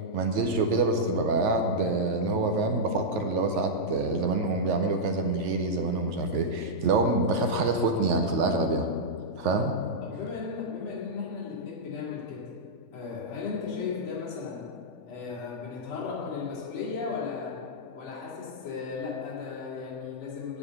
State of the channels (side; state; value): right; late; 3.5 ms